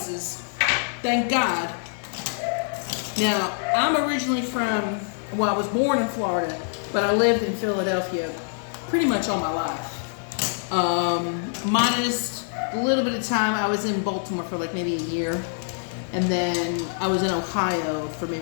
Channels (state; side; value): silent; right; digital silence